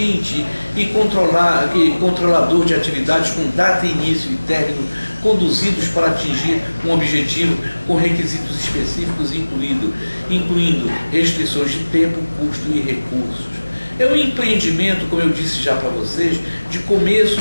e controlador de atividades com data, início e término, conduzidos para atingir um objetivo com requisitos específicos, incluindo restrições de tempo, custo e recursos. É um empreendimento, como eu disse já para vocês, de começo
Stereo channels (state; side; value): inverted; both; correlation -1.00